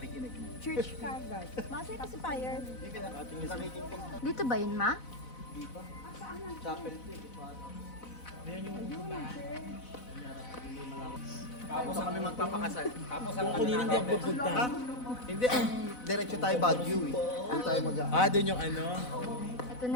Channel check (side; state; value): right; late; 4.0 ms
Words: Church kagad. Masa yung pacifier. Dito ba yun, ma? Tapos kami magpapakasal. Tapos ang Kanina hindi ako pupunta. Hindi, ang diretso tayo Baguio eh. Doon tayo Doon yung ano? Ito